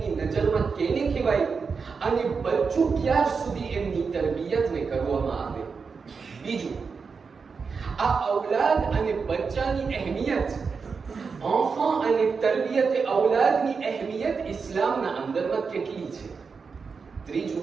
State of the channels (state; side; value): quieter; left; 5.2 dB